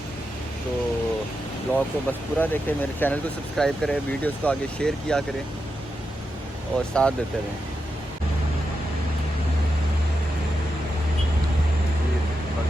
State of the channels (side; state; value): both; normal; correlation 0.87